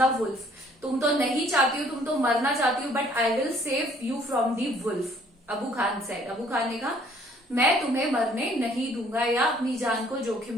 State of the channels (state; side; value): normal; both; correlation 0.60